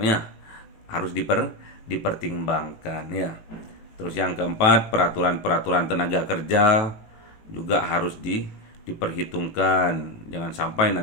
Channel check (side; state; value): right; late; 18 ms